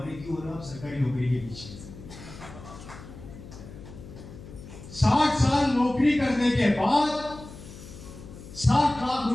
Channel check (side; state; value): left; noise; hum, 15 dB below the sound